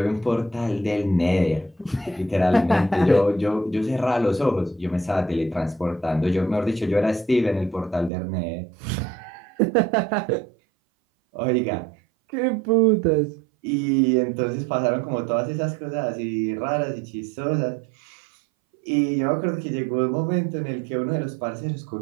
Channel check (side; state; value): left; drops out; at 8.1 s